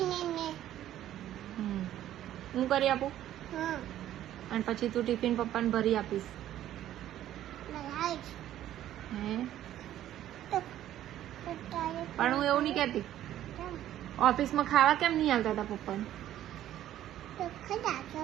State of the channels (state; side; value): quieter; left; 12.4 dB